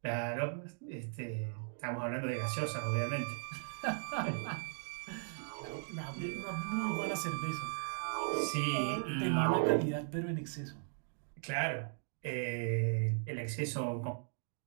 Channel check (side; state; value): left; silent; digital silence